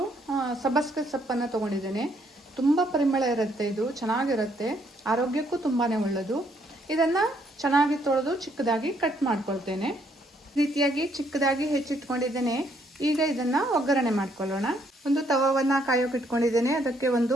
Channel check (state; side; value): normal; both; correlation 0.70